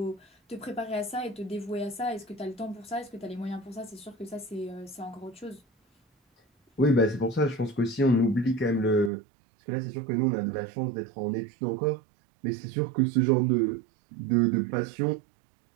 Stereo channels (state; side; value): drops out; left; at 9.1 s